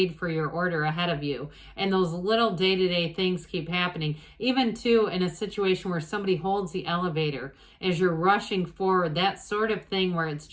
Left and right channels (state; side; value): identical; both; correlation 1.00